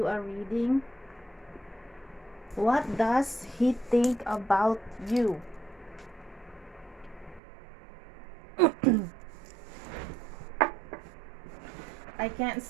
a reading. What does he think about you? I can't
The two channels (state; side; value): drops out; left; at 7.4 s